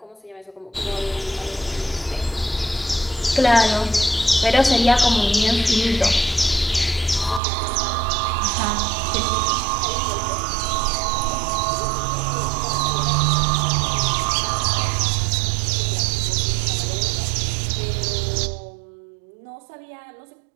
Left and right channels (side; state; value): left; drops out; at 7.4 s